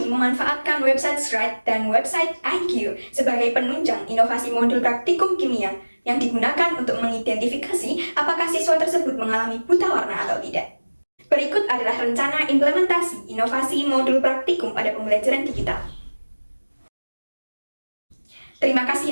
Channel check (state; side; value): inverted; both; correlation -1.00